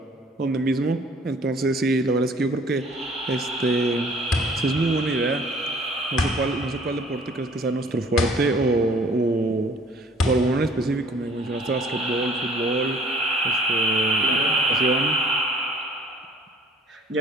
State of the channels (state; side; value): normal; both; correlation 0.54